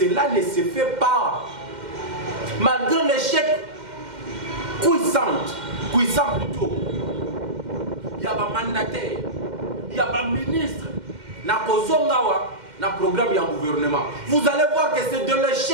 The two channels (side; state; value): left; late; 2.1 ms